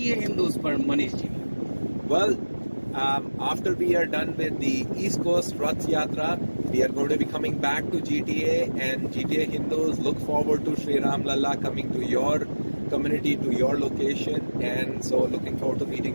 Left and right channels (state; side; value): inverted; both; correlation -1.00